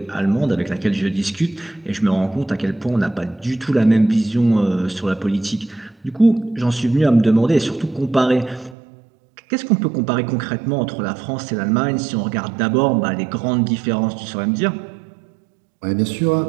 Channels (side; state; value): left; drops out; at 8.8 s